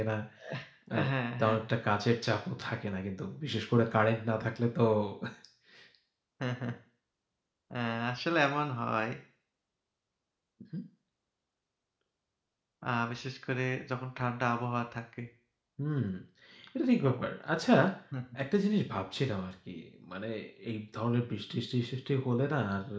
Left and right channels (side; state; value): both; identical; correlation 1.00